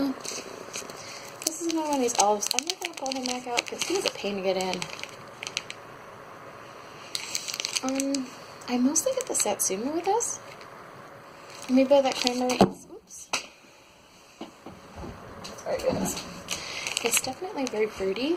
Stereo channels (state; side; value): identical; both; correlation 1.00